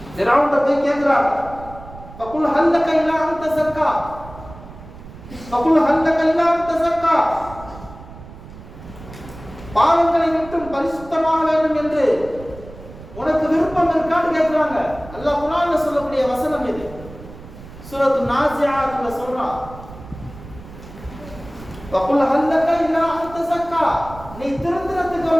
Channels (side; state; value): right; noise; rumble, 16 dB below the sound